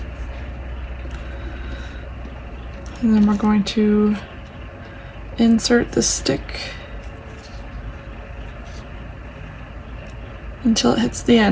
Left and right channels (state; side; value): identical; both; correlation 1.00